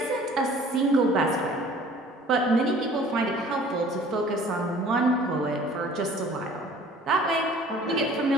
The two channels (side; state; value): both; normal; correlation 0.51